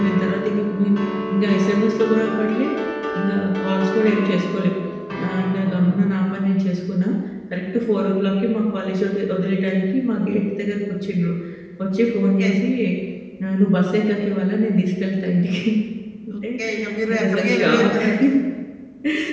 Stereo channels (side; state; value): both; identical; correlation 1.00